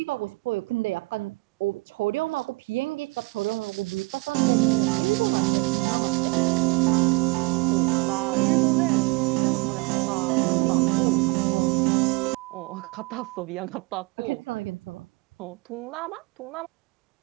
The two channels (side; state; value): left; quieter; 26.1 dB